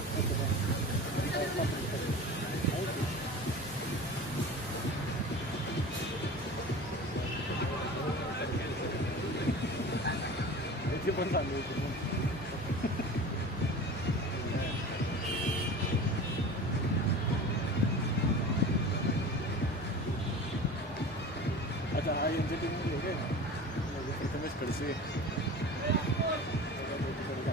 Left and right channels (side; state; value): both; normal; correlation 0.35